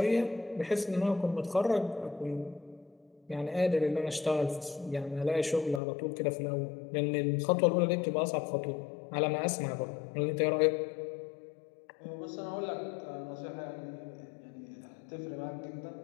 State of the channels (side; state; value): right; drops out; at 5.8 s